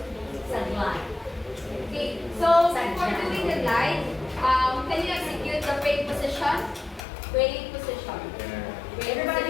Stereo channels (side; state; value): right; drops out; at 7.1 s